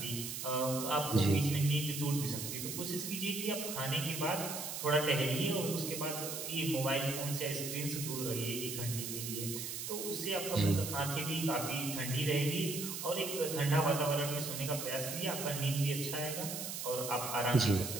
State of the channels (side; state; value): right; noise; hiss, 5 dB below the sound